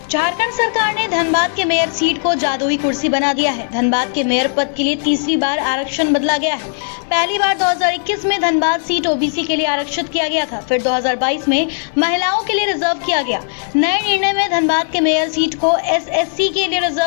झारखंड सरकार ने धनबाद के मेयर सीट को जादुई कुर्सी बना दिया है। धनबाद के मेयर पद के लिए तीसरी बार आरक्षण बदला गया है। पहली बार 2021 में धनबाद सीट ओबीसी के लिए आरक्षित किया गया था, फिर 2022 में महिलाओं के लिए रिजर्व किया गया। नए निर्णय में धनबाद के मेयर सीट को एसएससी के लिए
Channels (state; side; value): silent; right; 67 dB below the other